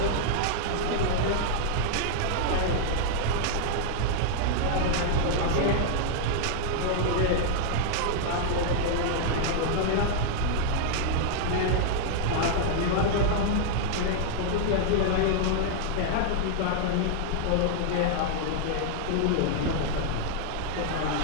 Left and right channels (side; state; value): both; different; correlation -0.01